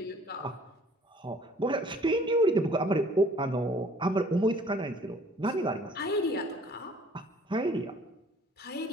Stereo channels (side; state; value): both; normal; correlation 0.55